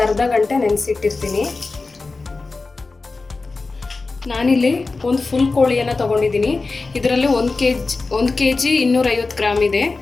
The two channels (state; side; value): quieter; right; 3.8 dB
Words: ಅರ್ಧ ಗಂಟೆ ನೆನೆಸಿಟ್ಟಿರ್ತೀನಿ. ನಾನಿಲ್ಲಿ ಒಂದು ಫುಲ್ ಕೋಳಿಯನ್ನು ತೊಗೊಂಡಿದ್ದೀನಿ. ಇದರಲ್ಲಿ 1 kg 250 ಗ್ರಾಮ್ ಇದೆ.